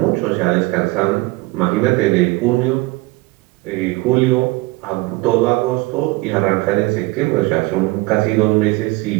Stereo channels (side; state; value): left; quieter; 22.4 dB